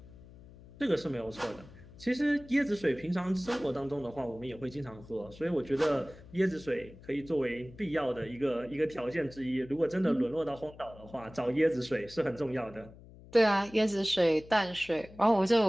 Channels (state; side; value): noise; left; hum, 20 dB below the sound